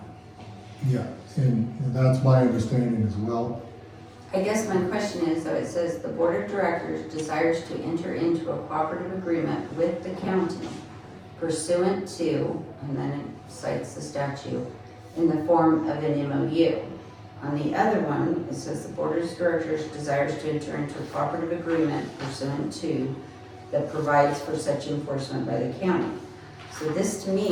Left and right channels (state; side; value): identical; both; correlation 1.00